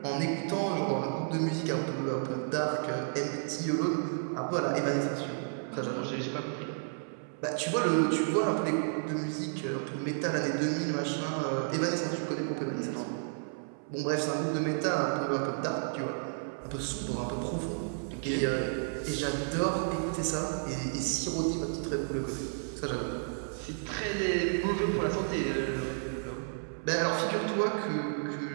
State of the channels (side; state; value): left; silent; 56 dB below the other